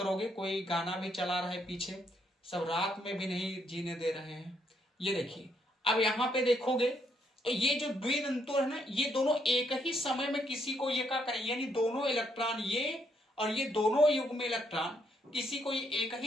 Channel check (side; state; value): both; normal; correlation 0.73